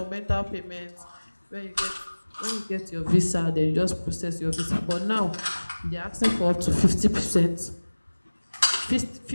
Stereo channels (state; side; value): inverted; both; correlation -1.00